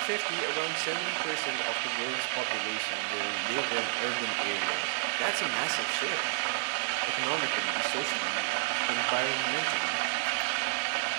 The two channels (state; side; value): silent; left; digital silence